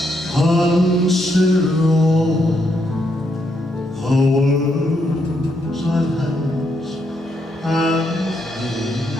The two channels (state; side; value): normal; both; correlation 0.78